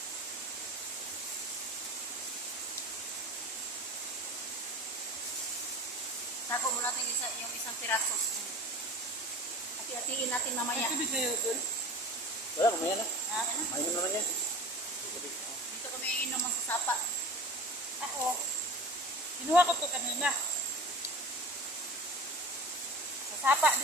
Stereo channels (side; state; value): both; normal; correlation 0.37